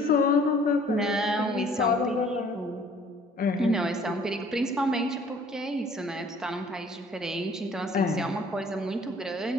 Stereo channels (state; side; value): normal; both; correlation 0.55